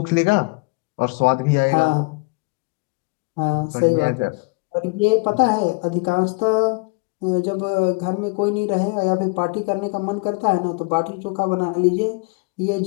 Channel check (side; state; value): right; quieter; 29.9 dB